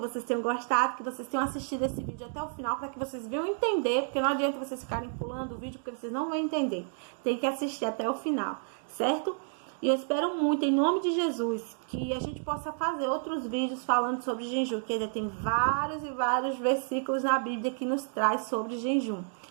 tenham gostado, que vocês tenham assistido esse vídeo até o final, para que vocês venham entender, porque não adianta vocês ficarem pulando o vídeo, porque vocês não vão entender. Tem que assistir até o final, certo? E eu espero muito, em nome de Jesus, que a gente possa fazer outros vídeos falando sobre jejum, que ainda tem vários e vários versículos na Bíblia que nos traz sobre jejum.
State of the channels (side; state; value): left; silent; 57 dB below the other